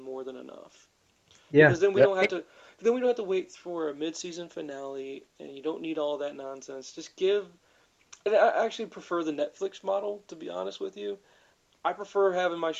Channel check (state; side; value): identical; both; correlation 1.00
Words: than enough, Yeah, because then we Yep. don't have to wait for a mid-season finale, and you don't need all that nonsense. Just give. And I actually prefer the Netflix model, to be honest with you. I prefer having my